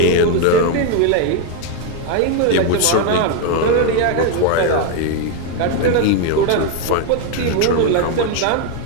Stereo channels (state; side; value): different; both; correlation 0.01